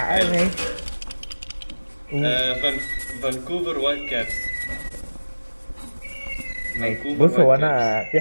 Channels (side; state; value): both; inverted; correlation -1.00